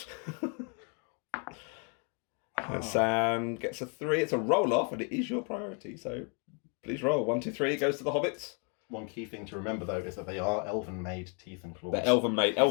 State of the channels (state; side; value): quieter; right; 38.8 dB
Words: And Sam gets a 3. It's a roll off, and it is your priority. So please roll. 1, 2, 3 goes to the hobbits. One key thing to remember though is that they are elven made teeth and claws. They're elven